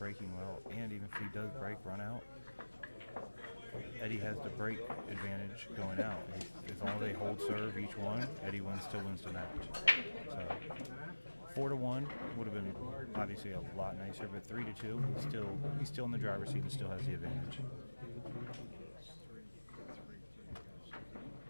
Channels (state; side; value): inverted; both; correlation -1.00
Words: well. And even if he does break, run out, Eddie has the break advantage going out. As long as they hold serve each one, Eddie still wins the match. So 4-1 would have been obviously a lot nicer, but 3-2, he's still in the driver's seat and still has the advantage.